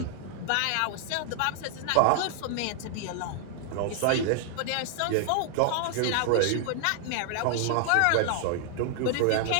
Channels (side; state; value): both; different; correlation 0.00